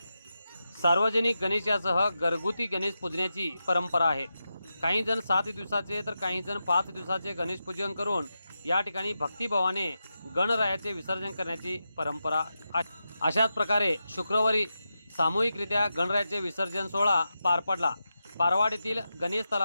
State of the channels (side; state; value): both; inverted; correlation -0.89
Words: सार्वजनिक गणेशासह घरगुती गणेश पूजण्याची परंपरा आहे। काही जण 7 दिवसाचे तर काही जण 5 दिवसाचे गणेश पूजन करून या ठिकाणी भक्तिभावाने गणरायाचे विसर्जन करण्याची परंपरा आहे। अशाच प्रकारे शुक्रवारी सामूहिकरित्या गणरायाचे विसर्जन सोहळा पार पडला। पारवाड येथील गणेश